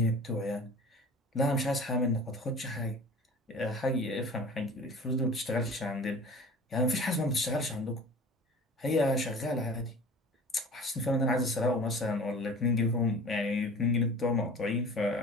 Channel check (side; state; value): both; normal; correlation 0.41